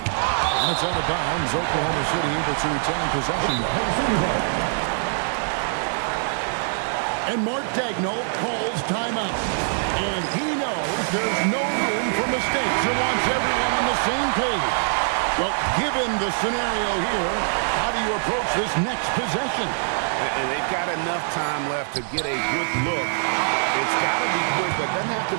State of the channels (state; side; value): silent; left; digital silence